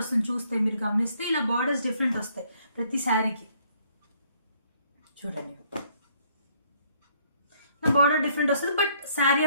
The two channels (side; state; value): both; inverted; correlation -0.65